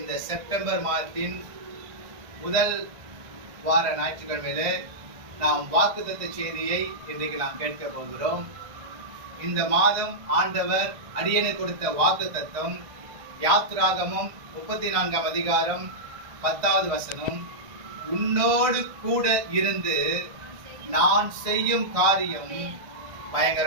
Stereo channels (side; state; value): left; late; 1.5 ms